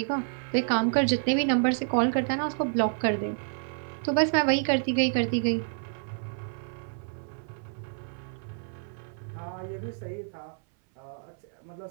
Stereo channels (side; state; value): left; silent; 59 dB below the other